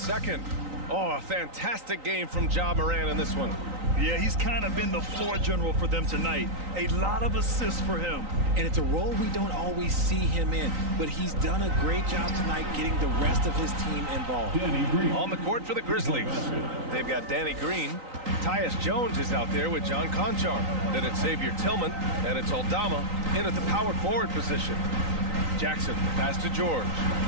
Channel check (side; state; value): left; late; 3.9 ms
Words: Oh, a fantastic game from Ja Morant in this one. Yeah, he's kind of been the floor general for them tonight. A lot of assists for him. And it's a role we don't always see him in, but he's done a great job tonight getting the rest of his team involved. Danny Green. On the court for the Grizzlies. They've got Danny Green. Tyus Jones is out there with John Conchar. Then it's Xavier Tillman, and it's Aldama in at the power forward position. Jackson, the pass to George.